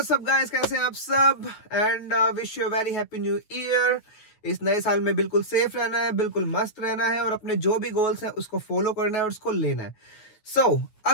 up guys, कैसे हैं आप सब and wish you very happy new year. इस नए साल में बिल्कुल सेफ रहना है, बिल्कुल मस्त रहना है और अपने जो भी गोल्स हैं उसको फॉलो करना है और उसको लेना है।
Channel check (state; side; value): late; right; 9.2 ms